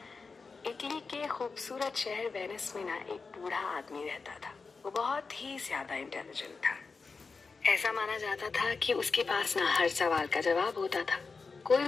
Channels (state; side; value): quieter; right; 4.5 dB